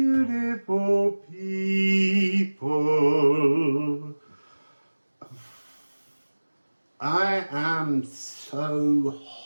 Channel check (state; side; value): inverted; both; correlation -1.00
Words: people. I am so